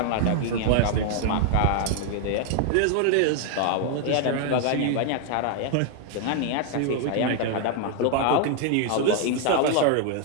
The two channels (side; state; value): both; different; correlation 0.00